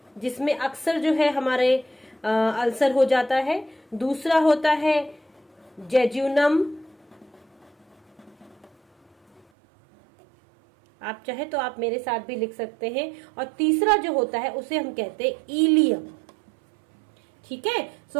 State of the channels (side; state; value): left; drops out; at 9.4 s